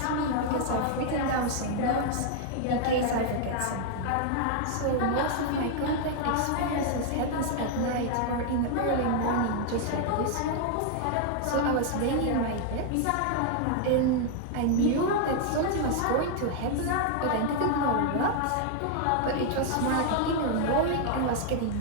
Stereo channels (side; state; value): both; different; correlation 0.00